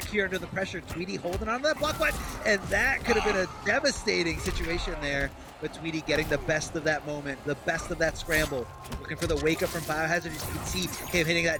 here under the pressure. Tweedy holding on to that block button, and that could have been a devastating situation there. But Tweedy getting the best of that moment, the best of that scramble. Looking for the wake up from BioHazard. As you can see him hitting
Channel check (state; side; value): identical; both; correlation 1.00